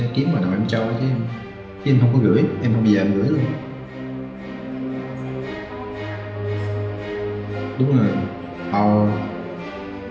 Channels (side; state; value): both; identical; correlation 1.00